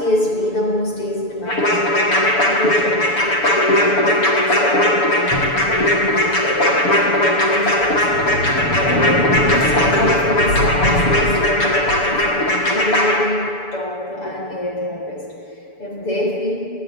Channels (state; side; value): late; right; 6.9 ms